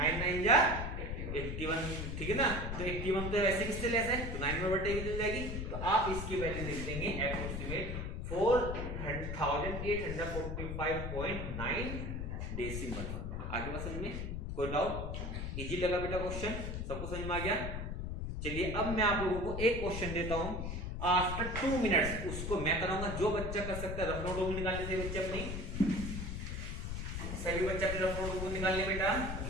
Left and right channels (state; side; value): noise; left; rumble, 4 dB below the sound